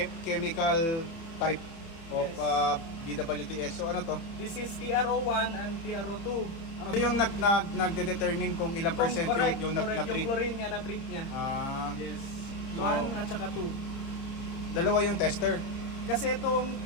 chemical type of BWTS. So ano to? This is TRO1 and TRO2. Ano yung nagde-determine kung ilang percent Correct, yung correct. na-treat? Yung chlorine niya, na-treat niya. Yes. 1 at saka 2. Dalawa yung tester. Kasi itong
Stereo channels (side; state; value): right; late; 30 ms